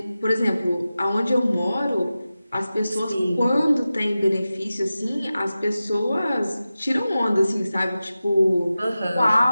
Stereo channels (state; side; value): inverted; both; correlation -0.94